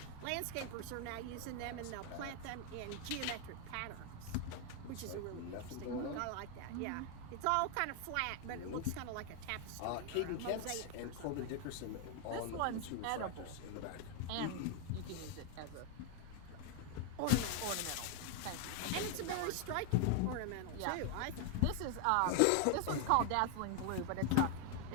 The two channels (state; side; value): different; both; correlation 0.01